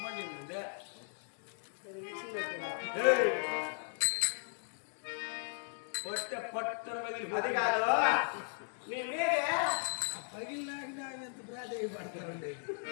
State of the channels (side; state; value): right; silent; 53 dB below the other